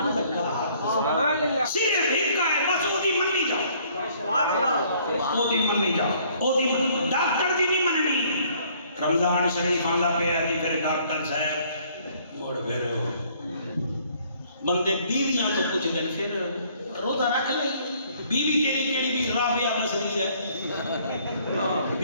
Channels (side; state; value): both; inverted; correlation -0.61